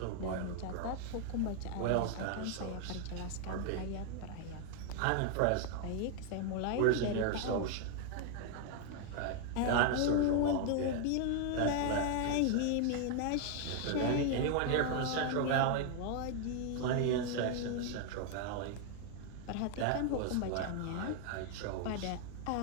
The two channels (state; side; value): different; both; correlation 0.00